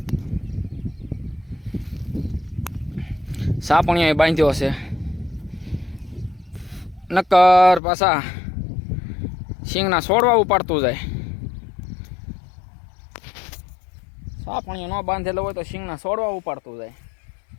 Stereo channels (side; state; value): right; drops out; at 7.8 s